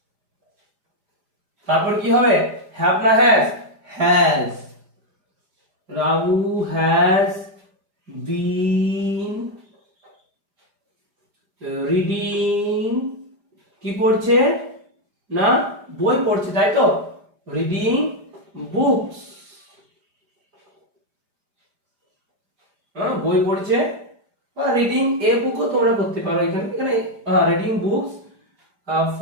তারপর কি হবে, হ্যাভ না has, Ramu has been reading, কি পড়ছে না, বই পড়ছে, তাই তো, রিডিং বুকস, বই পড়ছে, বা রিডিং এ বুকও তোমরা করতে পারো, এখানে রিডিং বুকস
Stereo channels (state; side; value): late; left; 5.0 ms